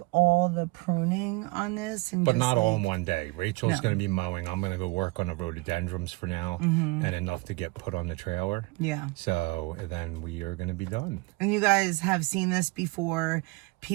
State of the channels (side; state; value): left; quieter; 24.6 dB